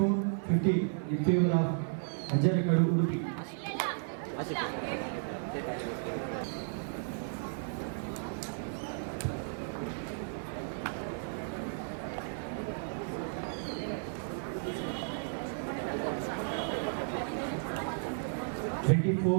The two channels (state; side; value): silent; left; 55 dB below the other